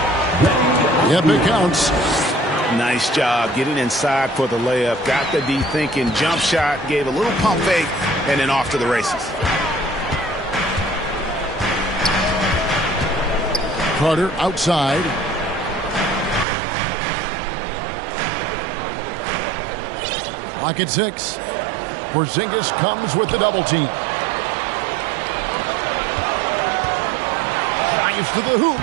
Yep, it counts. Nice job getting inside for the layup. Got the D thinking. Jump shot. Gave a little pump fake. And then off to the races. Carter outside. Clock at 6. Porzingis comes with the double team. Drives to the hoop.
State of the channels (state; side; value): drops out; left; at 16.4 s